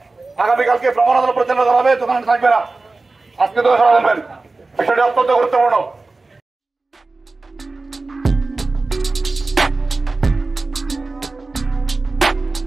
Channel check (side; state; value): left; quieter; 3.5 dB